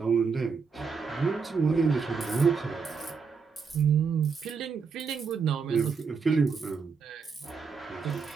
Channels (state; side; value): quieter; left; 5.3 dB